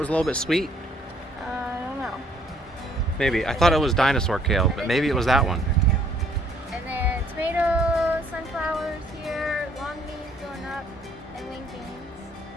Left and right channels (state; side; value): normal; both; correlation 0.63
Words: a little bit sweet? I don't know. Maybe. I thought it was Dinosaur Kale, but maybe it was that one. And then tomatoes, sunflowers here, long beans going up, and wing beans,